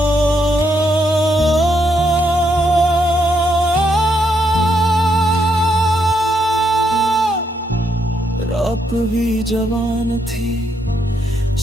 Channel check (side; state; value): both; normal; correlation 0.77